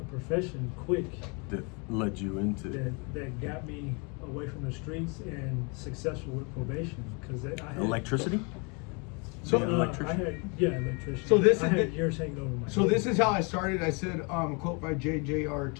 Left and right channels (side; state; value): right; quieter; 32.8 dB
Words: profession quick That led you into. that got me away from the streets and successful with probation because I had Electricity? So, Being an electrician? electrician. So this I is had the- years hanging over my So head. this is how I started. I said, a quote by J.J.R.